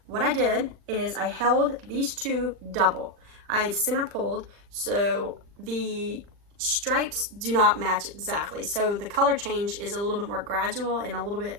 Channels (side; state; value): left; late; 40 ms